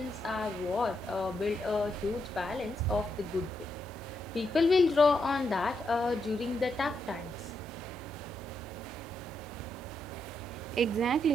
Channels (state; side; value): normal; both; correlation 0.81